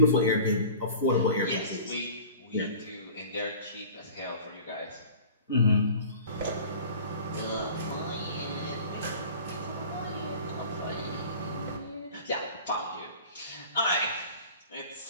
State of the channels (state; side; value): inverted; both; correlation -0.42